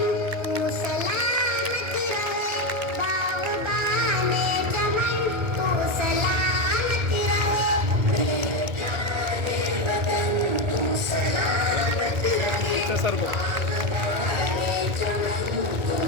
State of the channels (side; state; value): left; late; 1.8 ms